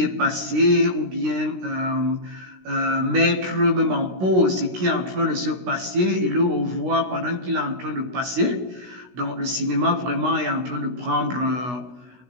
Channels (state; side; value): late; left; 16 ms